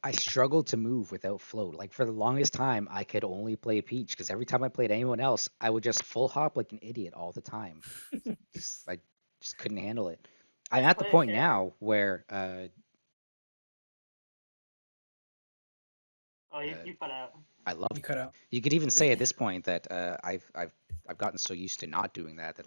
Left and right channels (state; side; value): inverted; both; correlation -1.00